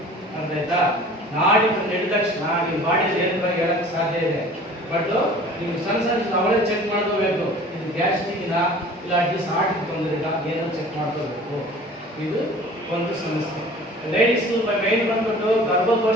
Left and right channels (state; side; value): normal; both; correlation 0.45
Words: ಅರ್ಥ ಆಯ್ತಾ? ನಾಡಿ ನಡೆದ ತಕ್ಷಣ ಈ ಬಾಡಿ ಏನು ಹೇಳಕ್ ಸಾಧ್ಯ ಇದೆ. ಬಟ್ ನೀವು ಸಣ್ಣ ಅವಳೇ ಚೆಕ್ ಮಾಡ್ಕೋಬೇಕು. ಇದು ಗ್ಯಾಸ್ಟ್ರಿಕ್ನ ಇಲ್ಲ ಅಟ್ಲೀಸ್ಟ್ ಹಾರ್ಟ್ ತೊಂದರೆ ಇಲ್ಲ, ಏನೋ ಚೆಕ್ ಮಾಡ್ಕೋಬೇಕು. ಇದು ಒಂದು ಸಮಸ್ಯೆ. ಲೇಡೀಸ್ ಮೇನ್ ಬಂದ್ಬಿಟ್ಟು